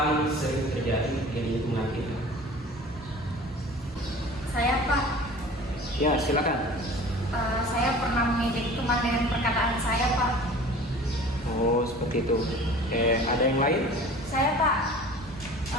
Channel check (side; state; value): both; normal; correlation 0.43